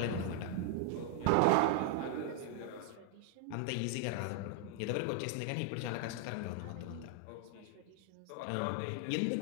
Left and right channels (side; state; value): both; different; correlation 0.00